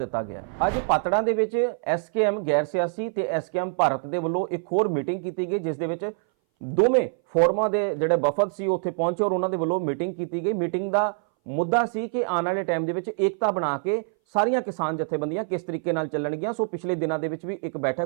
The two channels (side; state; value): left; silent; 59 dB below the other